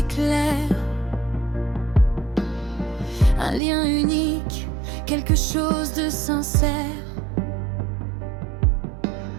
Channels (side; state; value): left; drops out; at 3.6 s